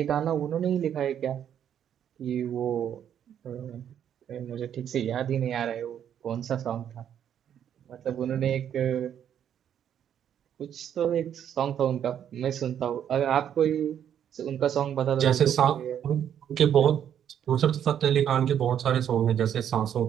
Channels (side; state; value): left; quieter; 9.4 dB